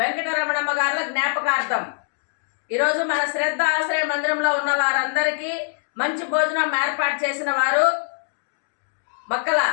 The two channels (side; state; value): right; silent; digital silence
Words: గారుల జ్ఞాపకార్థం ఈరోజు మన శ్రద్ధ ఆశ్రయ మందిరంలో ఉన్న వారందరికీ మంచి భోజనం ఏర్పాటు చేసిన వారు మక్కల